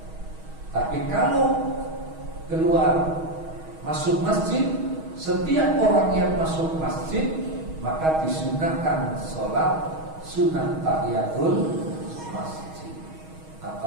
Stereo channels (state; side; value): late; left; 6.3 ms